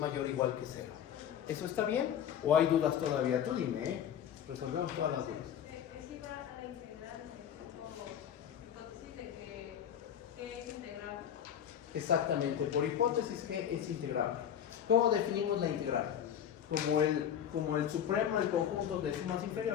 o igual que 0. ¿Eso está bien? ¿O hay dudas todavía? Tú dime, ¿eh? Resolvemos todas las dudas. Es igual a la integral por hipótesis de que es integral. Exactamente, por hipótesis g es integrable. ¿Cómo definimos la integral? Como el supremo del conjunto de sumas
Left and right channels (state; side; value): quieter; right; 9.2 dB